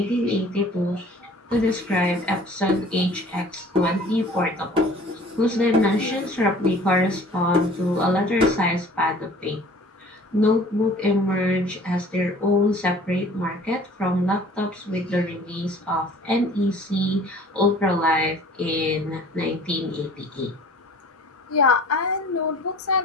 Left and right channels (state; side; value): normal; both; correlation 0.49